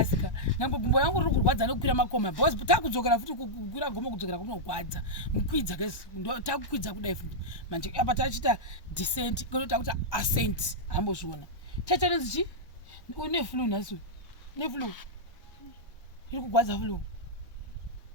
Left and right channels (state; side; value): late; right; 1.1 ms